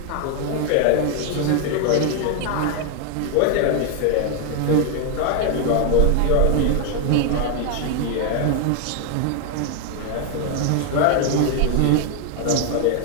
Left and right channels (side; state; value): both; different; correlation 0.01